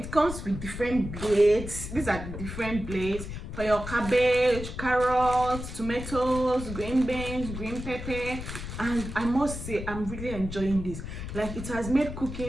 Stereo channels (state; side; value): noise; left; rumble, 8 dB below the sound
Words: comes with different blades. These are the different blades for your cabbage, carrots, tomatoes, green beans, green pepper. And I must say, I'm really enjoying this. Like, it has made